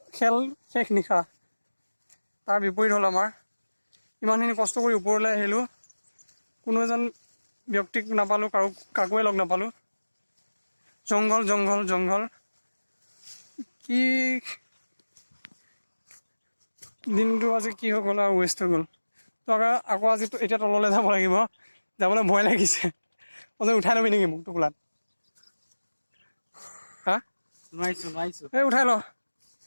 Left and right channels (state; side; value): inverted; both; correlation -1.00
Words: খেল শেষ নিশা তাৰ বিপৰীত হ'ল আমাৰ ইমানখিনি কষ্ট কৰি ওপৰলৈ আহিলোঁ কোনো এজন ব্যক্তিক নাপালোঁ কাকোৱে লগ নাপালোঁ জংঘল কি দিনটো আজি কি হৈ গ'ল আৰু ৱেষ্ট হৈ গ'ল তো আকৌ আজি এতিয়া তললৈ যাব লাগিব যাবলৈ ভয় লাগিছে উঠাই ল'বি নেকি মোক টোপোলাত হা নোৱাৰিছোঁ এই উঠাই ল